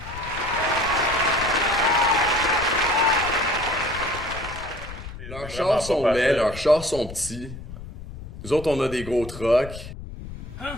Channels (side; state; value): left; noise; rumble, 12 dB below the sound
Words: Leurs chars sont laids, leurs chars sont petits. Nous autres, on a des gros trucks. Hein?